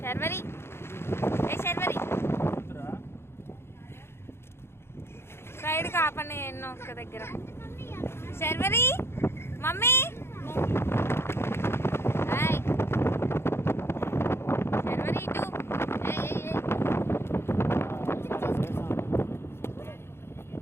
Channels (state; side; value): late; right; 0.12 ms